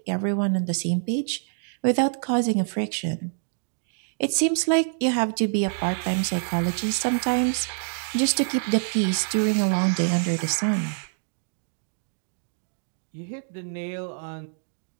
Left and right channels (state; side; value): silent; left; digital silence